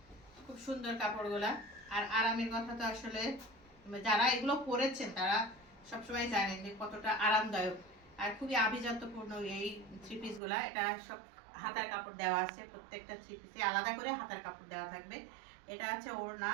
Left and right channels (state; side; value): drops out; left; at 10.4 s